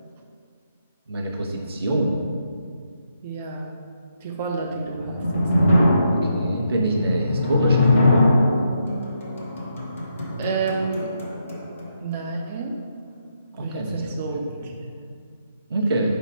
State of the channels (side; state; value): both; inverted; correlation -0.79